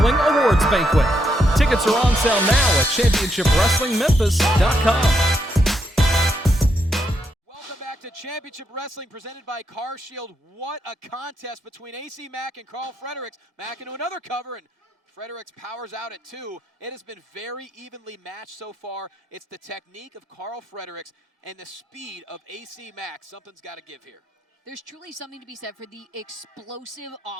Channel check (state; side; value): normal; both; correlation 0.79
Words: Awards Banquet. Tickets are on sale now at ChampionshipWrestlingMemphis.com. To Championship Wrestling presented by Car Shield. What a contest between AC Mack and Karl Fredericks. Mack into another cover, and Fredericks powers out at two. It has been very evenly matched so far. It's the technique of Karl Fredericks and the speed of AC Mack. Something's got to give here. There's truly something to be said for the explosive